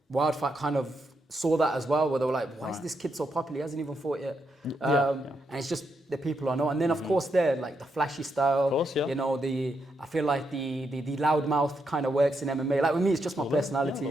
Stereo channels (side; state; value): both; normal; correlation 0.81